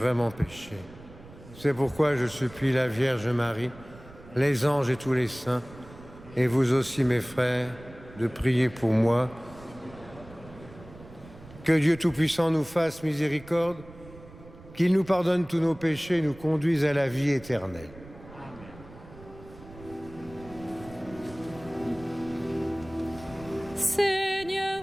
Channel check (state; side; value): noise; right; rumble, 19 dB below the sound